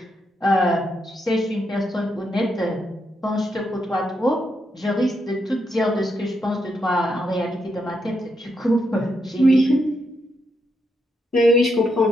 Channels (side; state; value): both; normal; correlation 0.81